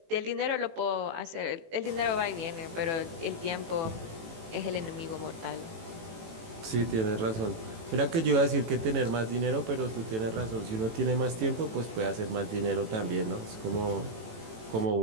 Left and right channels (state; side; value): late; left; 18 ms